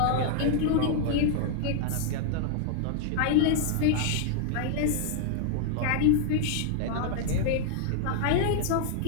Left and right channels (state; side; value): different; both; correlation 0.00